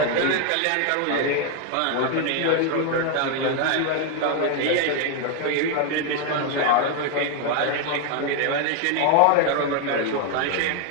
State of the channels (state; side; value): different; both; correlation 0.01